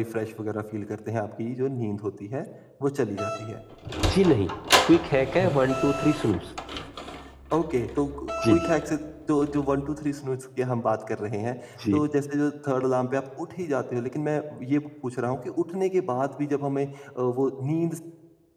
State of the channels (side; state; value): both; identical; correlation 1.00